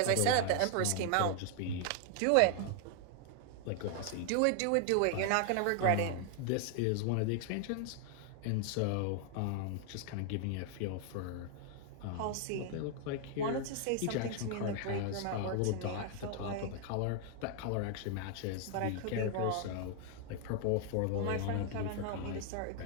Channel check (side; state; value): both; different; correlation 0.00